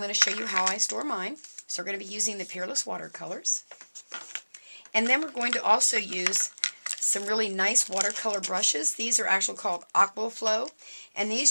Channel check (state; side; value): inverted; both; correlation -1.00